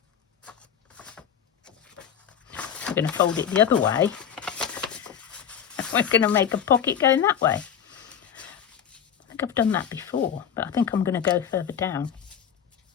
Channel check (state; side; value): quieter; right; 8.5 dB